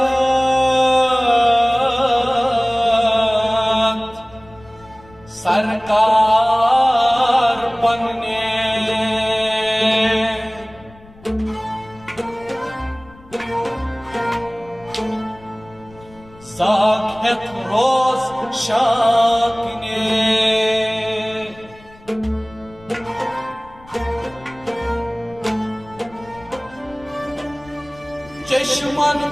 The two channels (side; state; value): left; noise; rumble, 24 dB below the sound